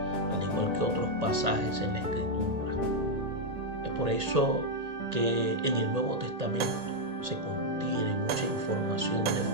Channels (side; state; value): left; late; 1.8 ms